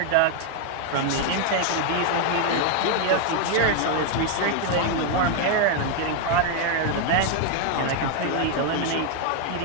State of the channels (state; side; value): different; both; correlation 0.00